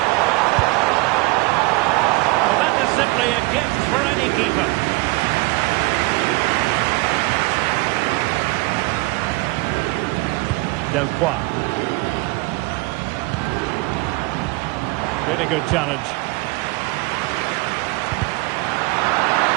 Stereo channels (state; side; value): quieter; left; 24.1 dB